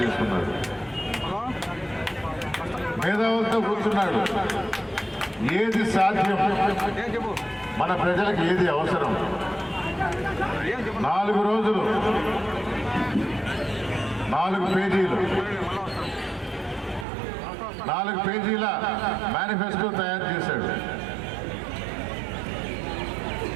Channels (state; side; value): drops out; left; at 17.1 s